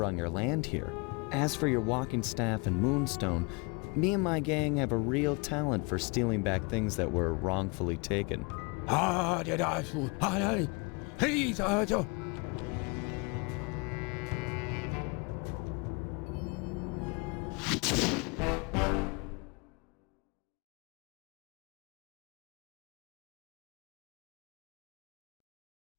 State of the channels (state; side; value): quieter; right; 30.1 dB